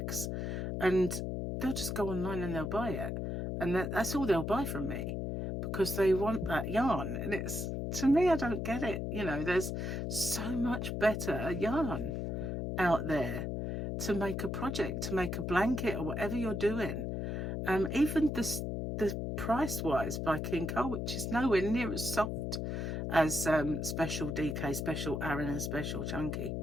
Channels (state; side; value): noise; left; hum, 2 dB below the sound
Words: and they'll just go online and they'll buy it, and that's all they'll buy from me, because they want that yarn. And it's, to me, I don't get it. You know, there's so much better yarn out there to make a project, to make a blanket, or whatever you're doing. Even the price wise by King Cole, which is nowhere near as soft as Special DK, Special Aran and Special Chunky.